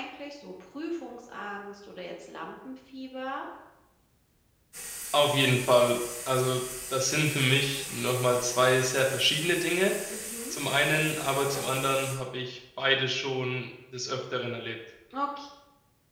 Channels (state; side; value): identical; both; correlation 1.00